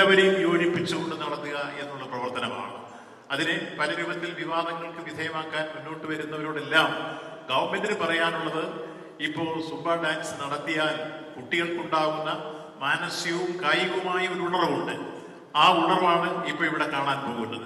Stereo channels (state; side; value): identical; both; correlation 1.00